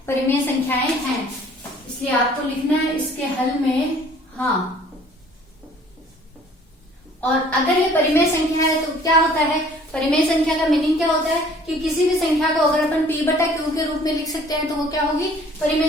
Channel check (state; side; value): normal; both; correlation 0.54